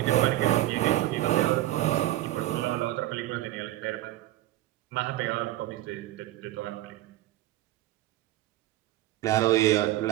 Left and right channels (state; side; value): quieter; left; 15.5 dB